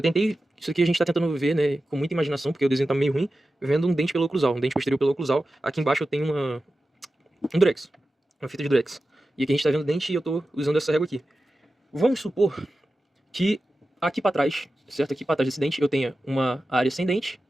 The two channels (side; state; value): both; normal; correlation 0.93